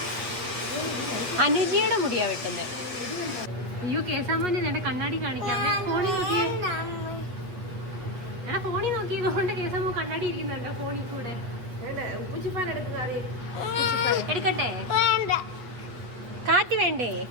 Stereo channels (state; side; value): late; left; 8.3 ms